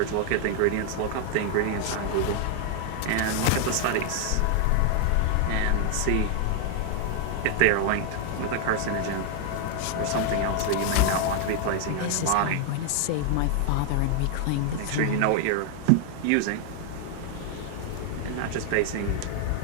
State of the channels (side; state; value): both; different; correlation 0.00